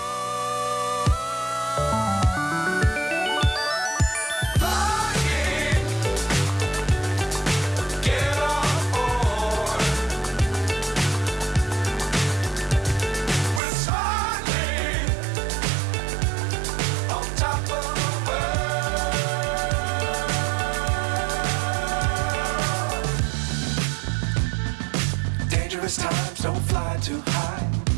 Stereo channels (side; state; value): left; drops out; at 13.6 s